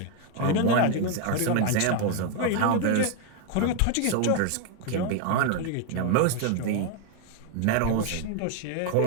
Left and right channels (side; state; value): both; different; correlation 0.01